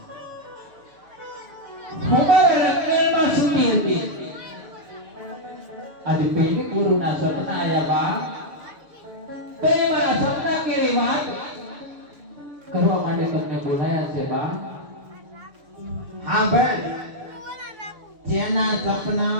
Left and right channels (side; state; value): left; late; 6.9 ms